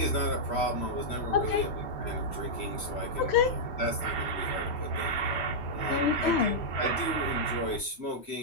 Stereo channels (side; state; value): right; late; 3.0 ms